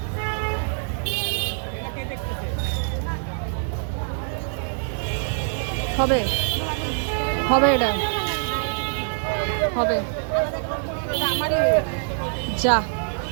হবে, হবে, এটা হবে। আমারই যা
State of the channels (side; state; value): left; silent; digital silence